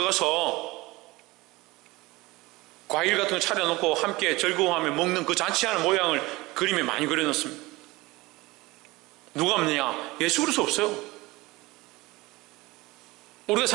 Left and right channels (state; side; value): quieter; left; 21.1 dB